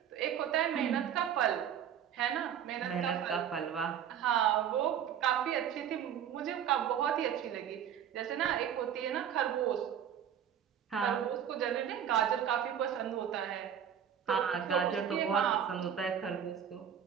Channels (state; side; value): quieter; left; 9.0 dB